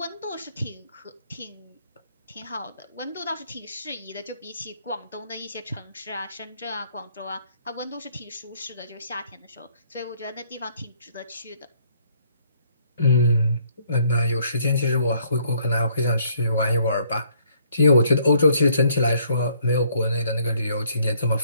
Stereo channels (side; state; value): both; inverted; correlation -0.66